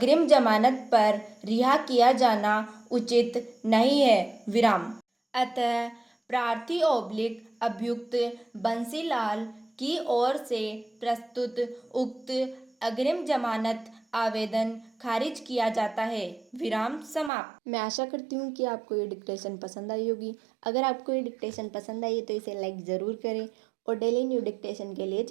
जमानत पर रिहा किया जाना उचित नहीं है। विराम। अतः प्रार्थी ओब्लिक अभियुक्त बंसीलाल की ओर से प्रस्तुत उक्त अग्रिम जमानत आवेदन खारिज किया जाता है। विराम समाप्त। मैं आशा करती हूँ कि आपको ये डिक्टेशन पसंद आई होगी। अगर आपको ये डिक्टेशन पसंद आई है तो इसे लाइक ज़रूर करें और डेली न्यू डिक्टेशन के लिए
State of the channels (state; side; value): drops out; left; at 17.3 s